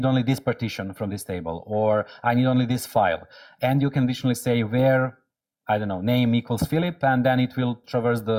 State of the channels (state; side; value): identical; both; correlation 1.00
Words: only this partition from this table, or I need only this file. And you can additionally say where, I don't know, name equals Filip, and then it will traverse